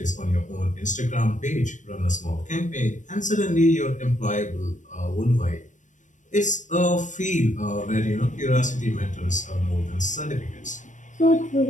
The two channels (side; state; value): right; late; 0.36 ms